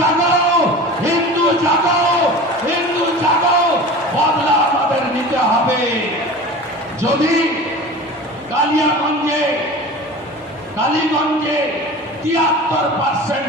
হিন্দু জাগাও, হিন্দু জাগাও। বদলা আমাদের নিতে হবে। যদি কালিগঞ্জে 73%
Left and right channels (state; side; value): normal; both; correlation 0.36